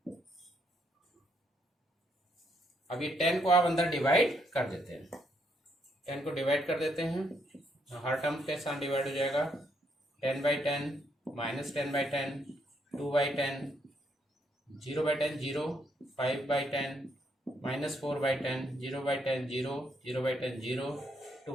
अब ये 10 को आप अंदर डिवाइड कर देते हैं, 10 को डिवाइड कर देते हैं, हर टर्म के साथ डिवाइड हो जाएगा। 10/10 -10/10 2/10 0/10 0 5/10 -4/10 0/10 0 0/10 0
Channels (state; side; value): normal; both; correlation 0.74